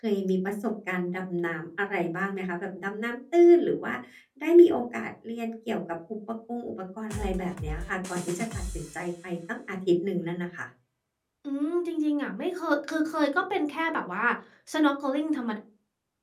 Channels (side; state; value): both; identical; correlation 1.00